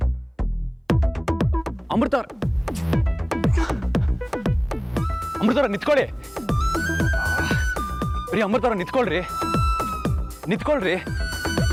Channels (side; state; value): both; identical; correlation 1.00